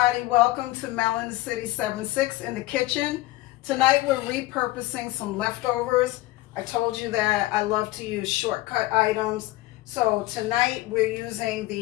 welcome to Melon City 76 in the kitchen. Tonight we're repurposing some leftovers. I told you that I love to use shortcut items. So tonight we're using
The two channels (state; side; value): quieter; right; 18.1 dB